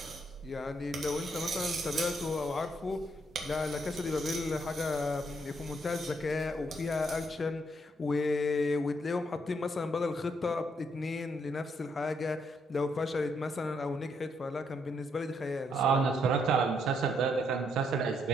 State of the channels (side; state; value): both; normal; correlation 0.74